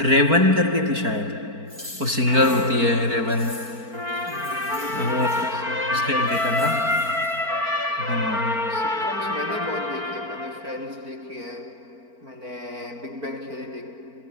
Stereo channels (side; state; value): left; late; 4.4 ms